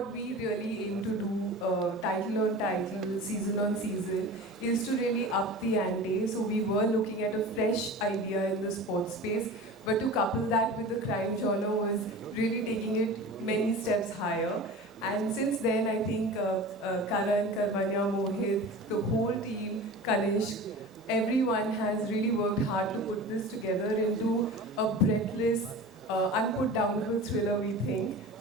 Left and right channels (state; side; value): normal; both; correlation 0.35